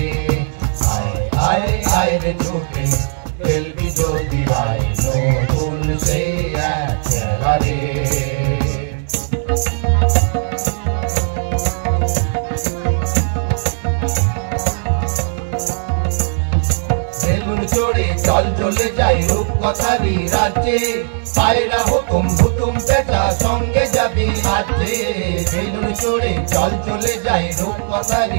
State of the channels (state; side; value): silent; left; digital silence